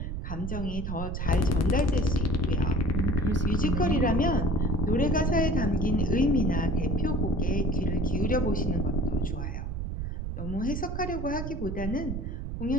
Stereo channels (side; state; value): right; noise; rumble, 4 dB below the sound